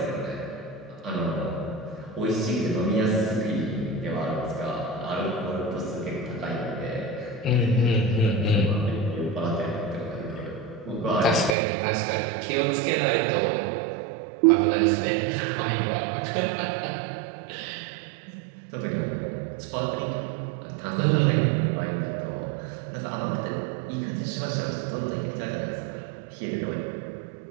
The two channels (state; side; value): drops out; left; at 11.6 s